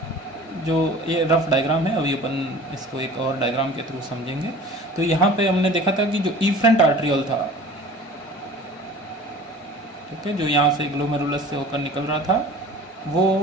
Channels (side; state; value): both; normal; correlation 0.43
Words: जो ये रफ डायग्राम है, अभी अपन इसको एक और डायग्राम के थ्रू समझेंगे। तो यहाँ पे हमने देखा था कि जो इफ्रंट आर्ट्रियोल था, ठीक है, जो यहाँ से ग्लोमेरुलस से होकर निकल रहा था,